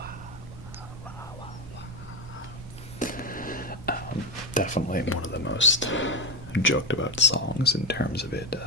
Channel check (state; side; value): normal; both; correlation 0.15